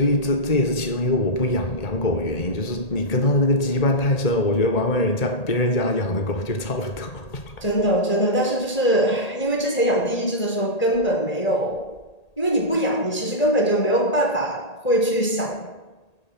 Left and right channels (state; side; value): late; right; 1.8 ms